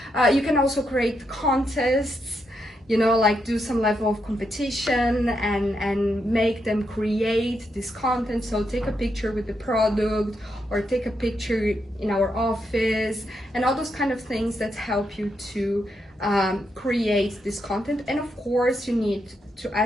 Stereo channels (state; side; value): normal; both; correlation 0.81